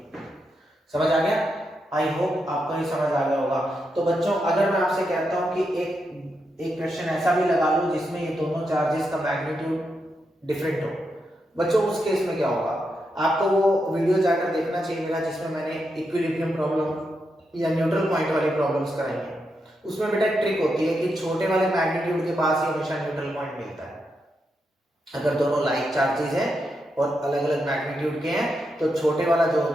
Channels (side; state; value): both; normal; correlation 0.84